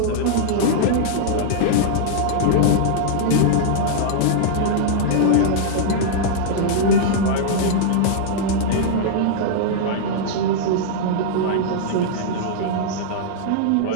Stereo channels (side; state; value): both; different; correlation -0.02